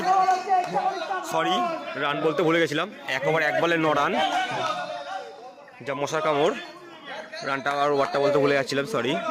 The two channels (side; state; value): both; identical; correlation 1.00